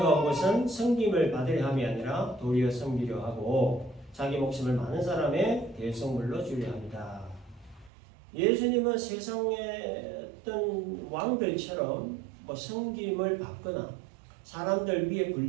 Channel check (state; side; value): drops out; left; at 7.9 s